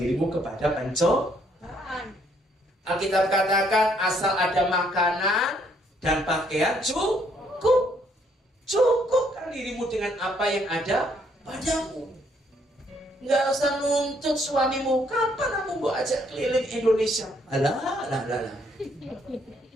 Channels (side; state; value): both; normal; correlation 0.68